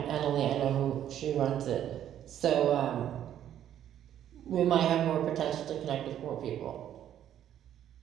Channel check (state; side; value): quieter; left; 10.7 dB